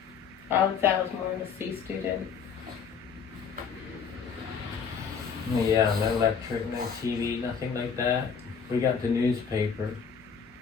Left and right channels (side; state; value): right; quieter; 6.5 dB